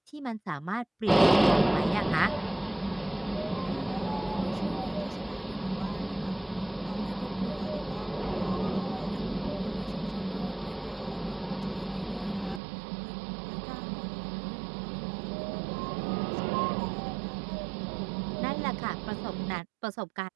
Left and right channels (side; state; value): left; drops out; at 12.6 s